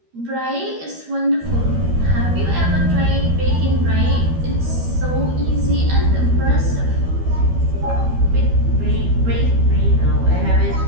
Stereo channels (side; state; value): left; late; 13 ms